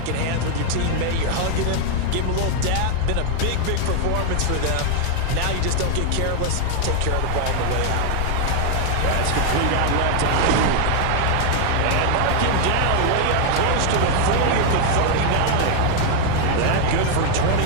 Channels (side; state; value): both; different; correlation 0.00